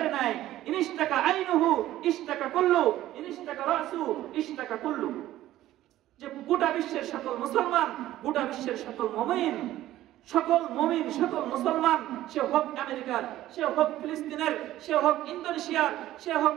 নাই। ইনিশতাকা আইনুহু ইশতাকা কুল্লু, ইনিশতাকা রাসু ইশতাকা কুল্লু। যে গোটা বিশ্বের সকল মুসলমান, গোটা বিশ্বের সকল মুমিন, সকল মুসলমান, সে হোক আমেরিকার, সে হোক ফিলিস্তিনের, সে হোক ইন্দোনেশিয়ার, সে হোক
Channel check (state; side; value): quieter; left; 14.3 dB